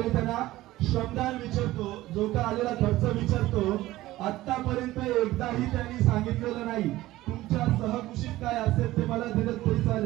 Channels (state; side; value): quieter; left; 16.7 dB